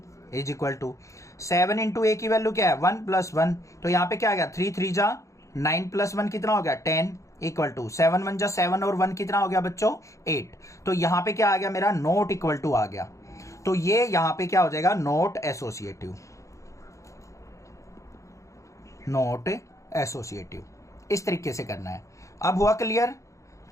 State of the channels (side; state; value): right; late; 0.15 ms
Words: is equal to 7 into A की वैल्यू क्या है, 1 प्लस 1। तो यहाँ पे क्या आ गया, 3 3 जा 9 प्लस 1 कितना हो गया, 10 इक्वल टू 7 1 जा 7 और 1 कितना हो गया बच्चों, 8। तो यहाँ पे क्या आ गया मेरा, नॉट इक्वल टू आ गया। तो ये यहाँ पे क्या हो जाएगा, नॉट एसोसिएटिव। नॉट एसोसिएटिव इस तरीके से करना है। अब हुआ क्लियर।